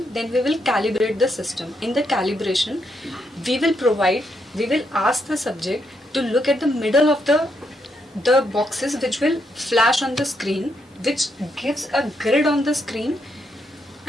we will calibrate the system. In the calibration, we will ask the subject to look at the middle of the boxes which will flash on the screen, which gives a grid on the screen,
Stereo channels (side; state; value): both; normal; correlation 0.78